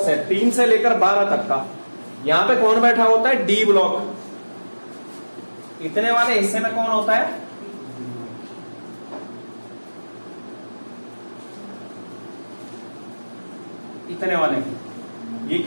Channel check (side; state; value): both; inverted; correlation -1.00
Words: है 3 से लेकर 12 तक का, यहां पे कौन बैठा होता है, डी ब्लॉक। इतने वाले हिस्से में कौन होता है, इतने वाले, ये